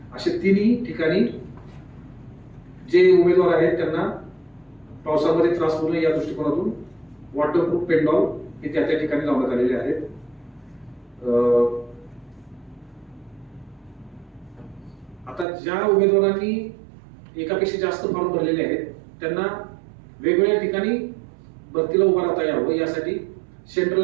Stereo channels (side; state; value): left; drops out; at 15.5 s